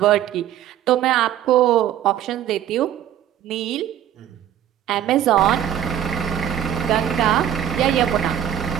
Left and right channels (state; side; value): quieter; left; 10.8 dB